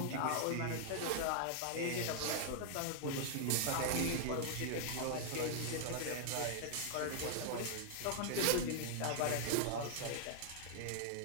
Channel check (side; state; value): both; different; correlation -0.01